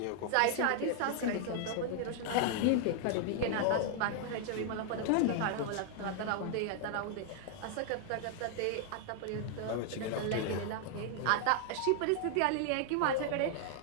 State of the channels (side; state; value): both; different; correlation 0.00